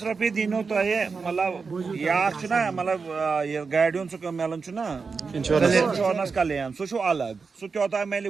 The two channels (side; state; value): left; quieter; 4.9 dB